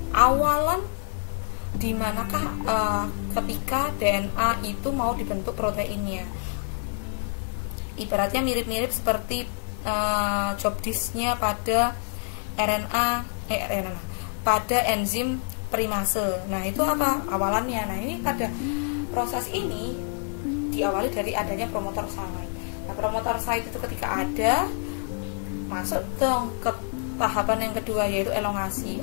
awalan di manakah ketika DNA itu mau dibentuk proteinnya. Ibaratnya mirip-mirip seperti job disk-nya pada pada enzim primase. Nah, itu apa? Awalannya. Nah, ini pada proses ini diawali dari adanya promotor site. Nah, promotor site itu ketika ada, masuk dong ke tahapan yang kedua, yaitu elongasi.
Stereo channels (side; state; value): right; silent; 60 dB below the other